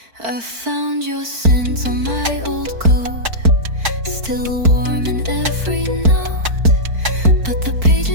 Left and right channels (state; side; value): late; left; 4.5 ms